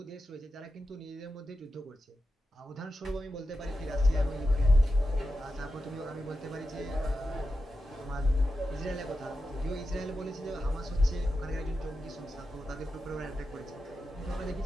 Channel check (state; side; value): normal; both; correlation 0.90